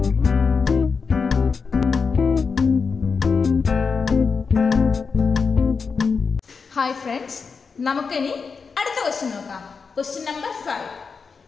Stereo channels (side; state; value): right; quieter; 5.2 dB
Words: friends, നമുക്കിനി അടുത്ത ക്വസ്റ്റ്യൻ നോക്കാം. Question number 5.